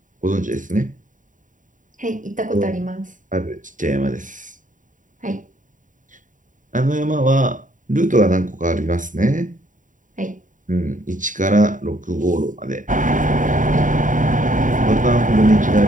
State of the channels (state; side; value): late; left; 0.38 ms